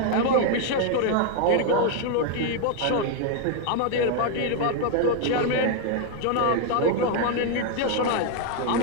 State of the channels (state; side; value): different; both; correlation 0.00